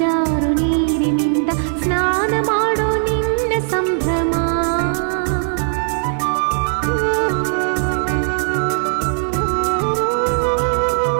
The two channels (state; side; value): silent; left; 65 dB below the other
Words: ಜಾರು ನೀರಿನಿಂದ ಸ್ನಾನ ಮಾಡೋ ನಿನ್ನ ಸಂಭ್ರಮ.